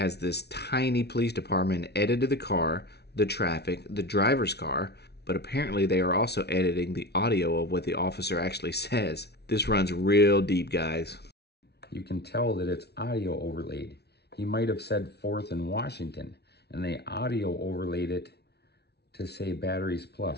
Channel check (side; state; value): right; late; 0.49 ms